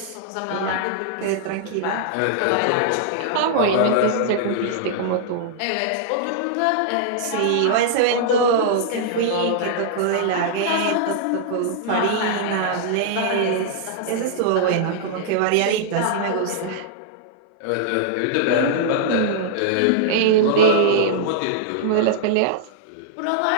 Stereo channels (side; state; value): both; different; correlation -0.01